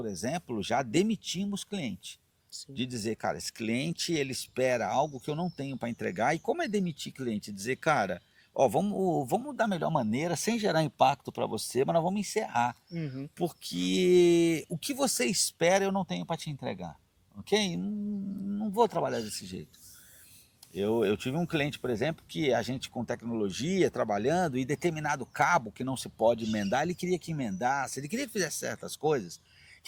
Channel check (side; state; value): both; identical; correlation 1.00